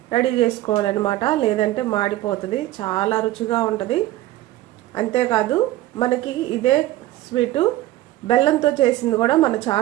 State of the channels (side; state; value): left; quieter; 15.5 dB